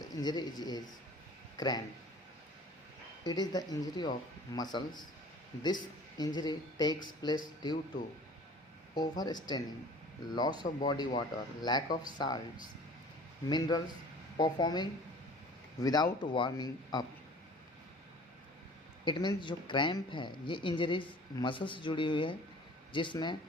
injury is cramp. It is the injury of muscles. This injury takes place due to overstraining, loss of body water, lack of salts, minerals, performing without warming up. It means जो cramp है ये injuries muscle से जुड़ी हुई है, जिसमें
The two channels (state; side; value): normal; both; correlation 0.47